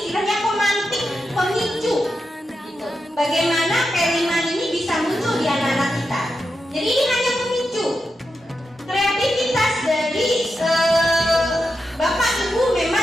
pemantik, pemicu gitu. Bagaimana P5 ini bisa muncul di anak-anak kita. Jadi ini hanya pemicu. Kreativitas dari Bapak Ibu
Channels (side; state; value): both; normal; correlation 0.88